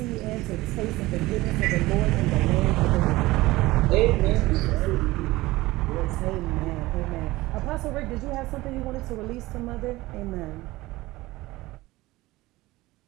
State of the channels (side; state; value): left; quieter; 19.1 dB